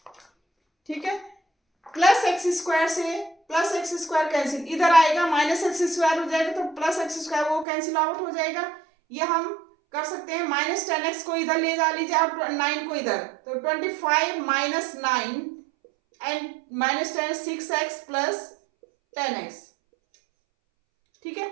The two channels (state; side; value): drops out; left; at 7.7 s